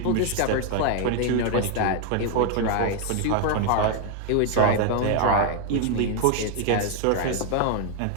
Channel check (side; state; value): both; different; correlation 0.00